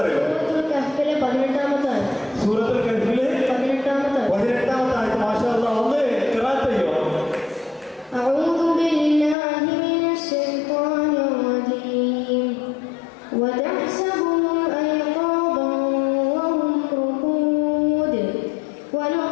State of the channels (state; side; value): drops out; right; at 9.3 s